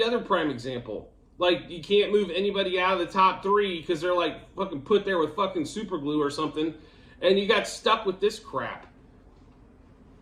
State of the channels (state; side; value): identical; both; correlation 1.00